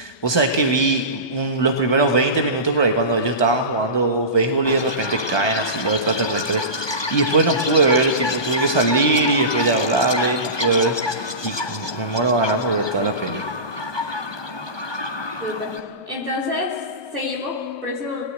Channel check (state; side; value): late; right; 1.2 ms